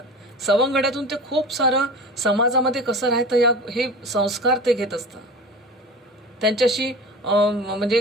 सवंगड्यातून ते खूप सारं समाजामध्ये कसं राहतं हे संस्कार ते घेत असतात. त्यांच्याशी म्हणजे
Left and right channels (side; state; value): both; normal; correlation 0.34